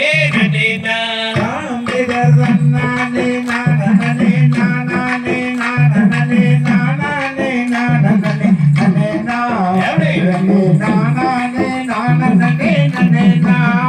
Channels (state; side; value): identical; both; correlation 1.00